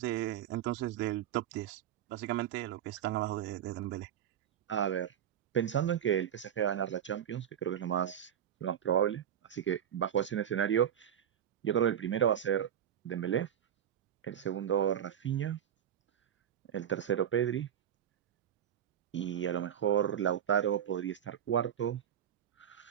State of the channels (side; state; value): left; quieter; 9.7 dB